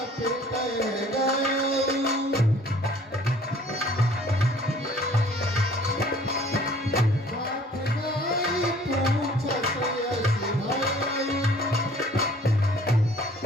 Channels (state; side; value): normal; both; correlation 0.53